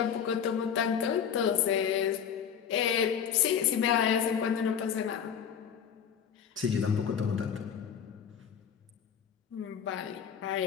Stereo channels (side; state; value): right; quieter; 7.9 dB